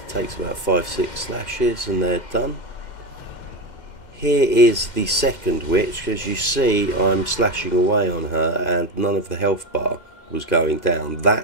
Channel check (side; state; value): right; late; 2.1 ms